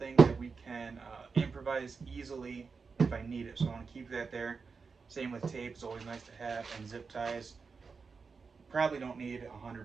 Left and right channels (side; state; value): left; quieter; 5.0 dB